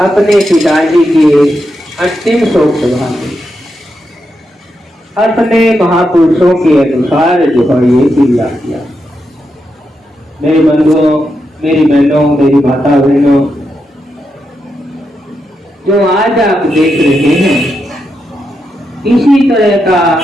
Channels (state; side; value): normal; both; correlation 0.85